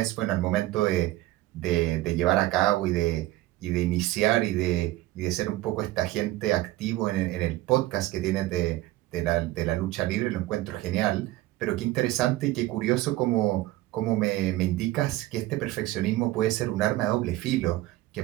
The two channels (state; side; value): quieter; left; 16.9 dB